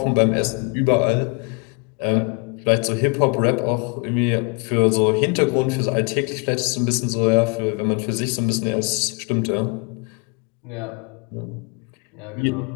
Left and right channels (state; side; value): quieter; right; 34.0 dB